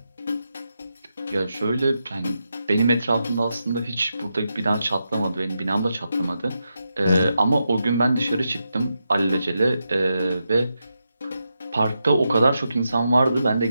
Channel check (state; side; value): inverted; both; correlation -0.86